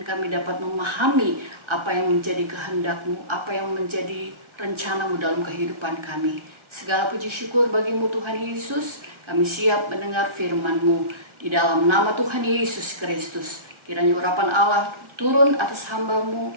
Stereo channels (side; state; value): left; late; 1.4 ms